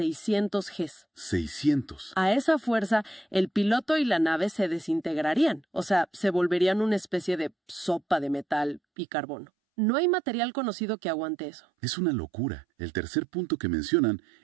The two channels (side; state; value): left; drops out; at 8.8 s